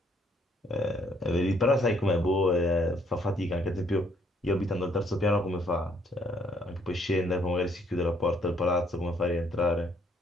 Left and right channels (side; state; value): both; normal; correlation 0.67